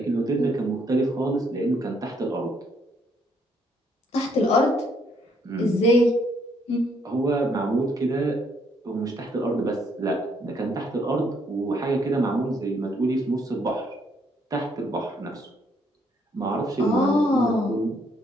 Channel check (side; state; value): both; normal; correlation 0.70